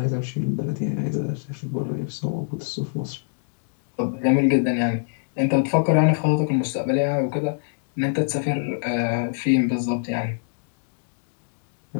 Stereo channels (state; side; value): silent; right; digital silence